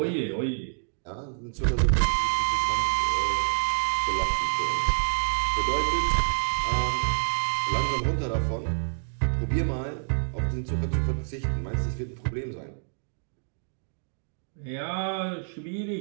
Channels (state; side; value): silent; left; digital silence